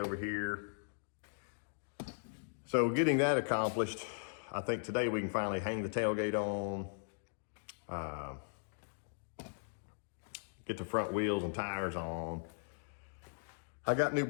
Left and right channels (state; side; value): silent; right; digital silence